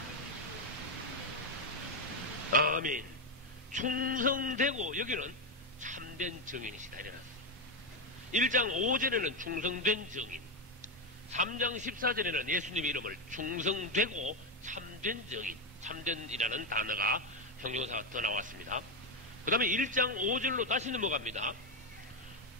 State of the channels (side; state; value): both; normal; correlation 0.08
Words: 아멘. 충성되고 여기는 참된 정인이시다 이래놨어요. 1장 5절에는 충성된 정인, 3장 14절에는 예수님의 이름을 충성되고 참된 정인, 참된이라는 단어가 형용사가 더 나왔습니다. 그 다음에 1장 5절로 다시 넘어갑니다.